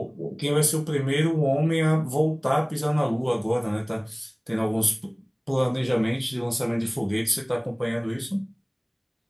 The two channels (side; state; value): both; identical; correlation 1.00